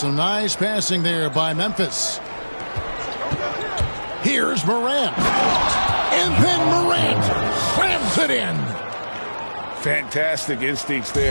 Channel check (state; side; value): inverted; both; correlation -1.00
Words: nice passing there by Memphis. Here's Morant. And then Morant slams it in. Fantastic instincts